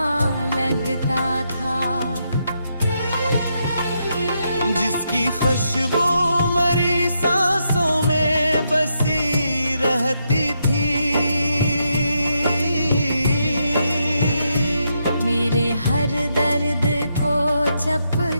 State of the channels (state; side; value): inverted; both; correlation -0.80